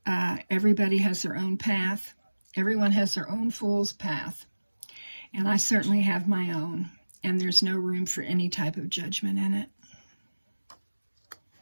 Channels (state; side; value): inverted; both; correlation -1.00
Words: Everybody has their own path. Everyone has their own fool's path. And I certainly have my own. And there's no room for any type of judgment in it.